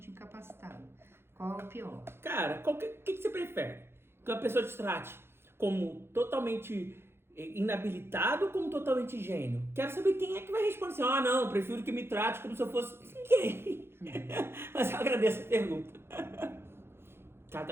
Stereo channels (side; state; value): left; late; 0.12 ms